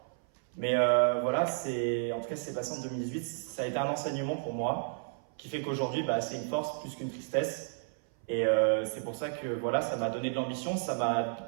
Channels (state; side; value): silent; left; 56 dB below the other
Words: Mais voilà, en tout cas, c'est passé en 2018. Ça a été un enseignement pour moi, qui fait qu'aujourd'hui, c'est une force plus qu'une tristesse. Et c'est pour ça que voilà, ça m'a donné de l'ambition, ça m'a